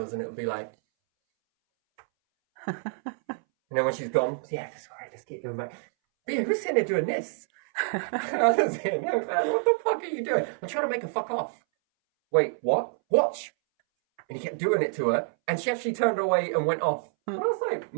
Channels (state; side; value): silent; left; 60 dB below the other